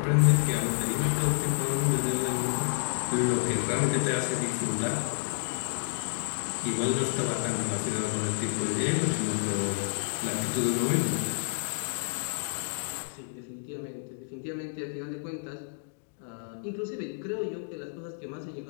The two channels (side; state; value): right; silent; digital silence